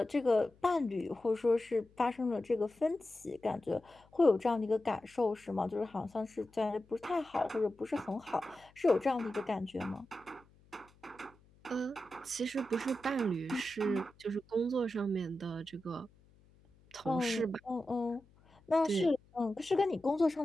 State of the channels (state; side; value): noise; left; hum, 29 dB below the sound